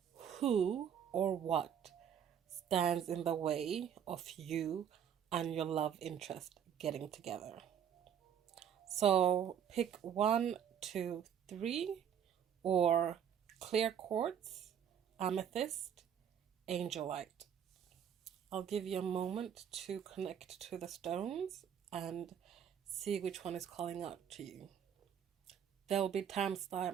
who or what stands in the way of you and your love interest getting together. So pick 1, 2, 3, or clear quartz, amethyst, angelite. I'll give you a moment to connect to the stones and see which one is calling out to you. There will be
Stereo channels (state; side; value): quieter; left; 8.7 dB